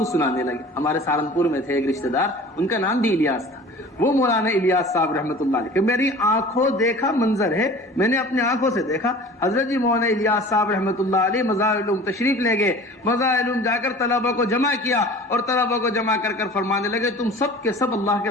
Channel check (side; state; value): both; normal; correlation 0.42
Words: سنانے لگے۔ ہمارے سہارنپور میں تھے ایک رشتہ دار، ان کا نام بھی الیاس تھا، وہ مولانا الیاس صاحب رحمۃ اللہ علیہ کہ میری آنکھوں دیکھا منظر ہے، میں نے اپنے آنکھوں سے دیکھا۔ حضرت جی مولانا الیاس صاحب رحمۃ اللہ علیہ مظاہر العلوم تشریف لے گئے، مظاہر العلوم جا کر طلبہ کو جمع کیا اور طلبہ کو جمع کر کر فرمانے لگے تم سب کے سب اللہ